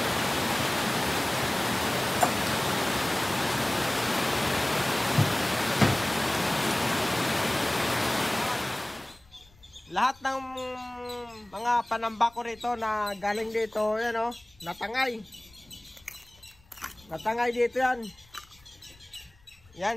Lahat ng mga panamba ko rito na galing dito, yan oh, natangay. Natangay dito yan.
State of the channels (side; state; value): left; noise; rumble, 28 dB below the sound